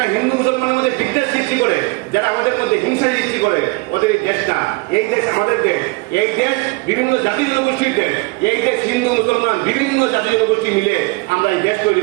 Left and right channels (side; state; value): left; quieter; 26.2 dB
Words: হিন্দু মুসলমানের মধ্যে বিদ্বেষ সৃষ্টি করে, যারা আমাদের মধ্যে হিংসা সৃষ্টি করে ওদের এই দেশ না। এই দেশ আমাদের দেশ, এই দেশ বিভিন্ন জাতি জনগোষ্ঠীর দেশ, এই দেশ হিন্দু মুসলমান বিভিন্ন জাতি জনগোষ্ঠী মিলে আমরা এই দেশ তৈরি